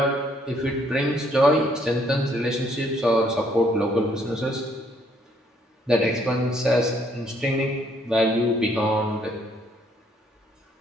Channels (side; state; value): both; normal; correlation 0.67